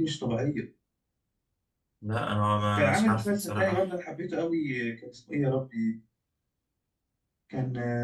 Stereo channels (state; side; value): identical; both; correlation 1.00